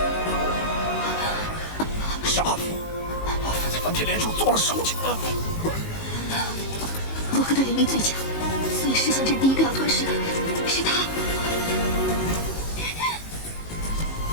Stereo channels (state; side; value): late; right; 19 ms